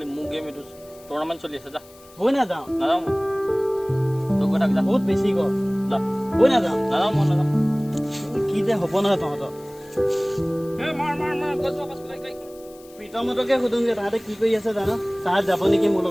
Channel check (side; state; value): left; noise; hiss, 25 dB below the sound